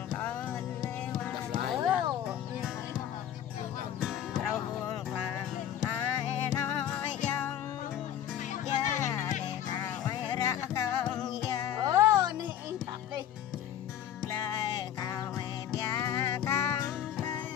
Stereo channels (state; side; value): quieter; right; 10.6 dB